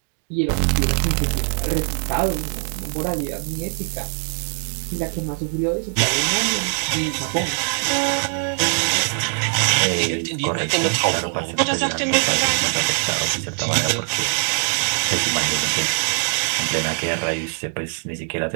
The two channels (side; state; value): left; silent; 58 dB below the other